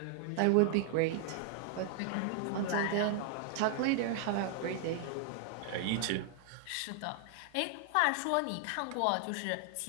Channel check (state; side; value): different; both; correlation 0.00